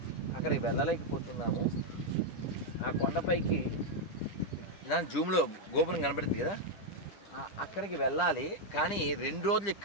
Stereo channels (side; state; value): right; late; 10 ms